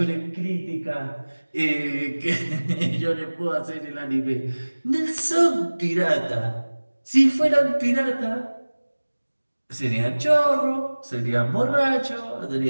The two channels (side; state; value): both; inverted; correlation -1.00